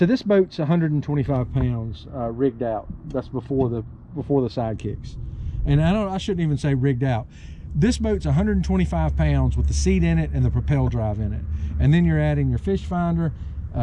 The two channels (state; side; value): identical; both; correlation 1.00